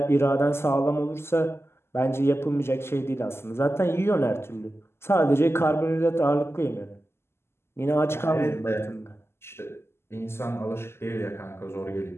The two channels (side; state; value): right; late; 0.12 ms